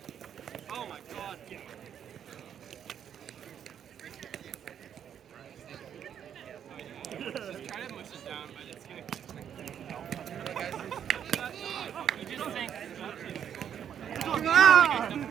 Oh my god. Just try to push it down, but it's gonna you just think Ah!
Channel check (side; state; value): left; quieter; 8.9 dB